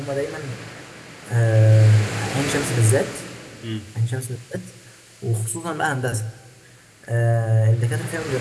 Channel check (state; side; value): identical; both; correlation 1.00